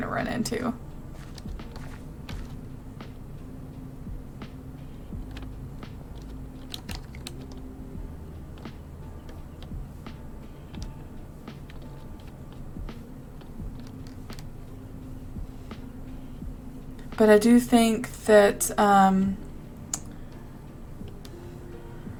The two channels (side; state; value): both; identical; correlation 1.00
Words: to run into. But I do think that